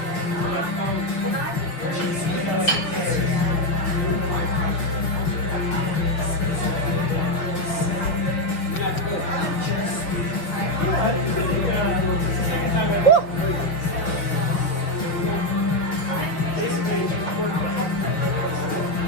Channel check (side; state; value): right; late; 6.4 ms